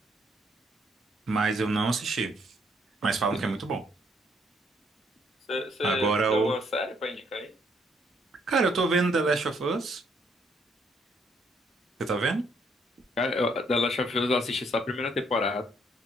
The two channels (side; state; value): both; normal; correlation 0.70